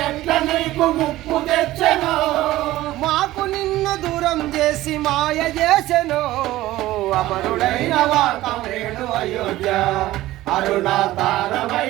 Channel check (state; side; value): quieter; left; 16.2 dB